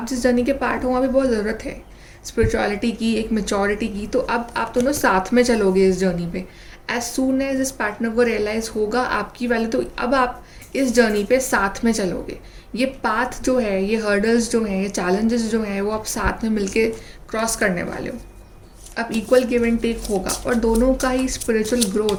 जिस जर्नी के पार्ट हो वहाँ पे बहुत ज़रूरत है स्पिरिचुअलिटी की, एक मैच्योरिटी की। तो अब आप दोनों साथ में चलोगे इस जर्नी पे। एज सून एज इस पार्टनर को रियलाइज़ होगा आपकी वैल्यू, तो अब आप इस जर्नी पे साथ में चलोगे। ये पाथ जो है, ये हर्डल्स जो हैं, ये चैलेंजेस जो हैं, वो आप साथ में मिलके क्रॉस करने वाले हो। अब इक्वल गिव एंड टेक होगा और दोनों का ही स्पिरिचुअल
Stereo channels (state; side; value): identical; both; correlation 1.00